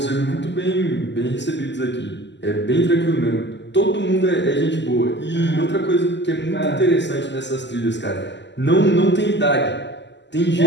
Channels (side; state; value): right; late; 0.51 ms